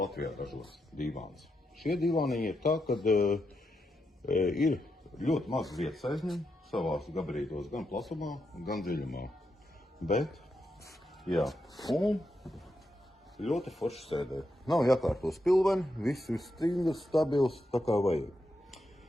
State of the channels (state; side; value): normal; both; correlation 0.84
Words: ražos divāns. Šie divāniņi ir tā, kad ir ļoti maz vietas aizņem savās gabarītos, gan plasumā, gan dziļumā. Bet, jā, un ļoti forši sēdē. Nav jākārto spilveni, viss ir stingrs, stabils, tā kā vajag.